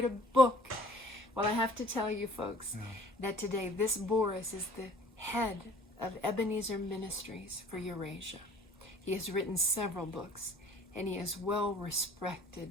a book. Well, I have to tell you, folks, that today this Boris is the head of Ebenezer Ministries for Eurasia. He has written several books, and he is well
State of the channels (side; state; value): both; normal; correlation 0.51